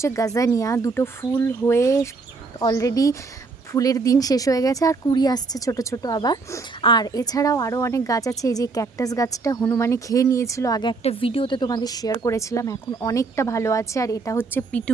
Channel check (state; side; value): quieter; left; 4.2 dB